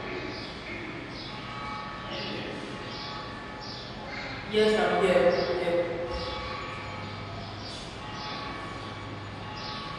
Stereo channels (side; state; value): both; identical; correlation 1.00